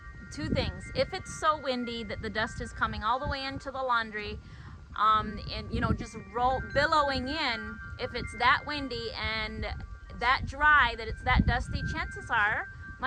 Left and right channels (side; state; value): both; identical; correlation 1.00